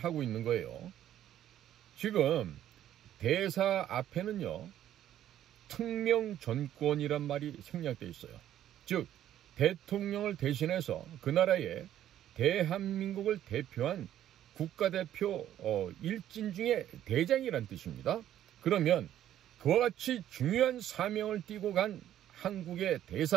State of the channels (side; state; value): left; quieter; 11.7 dB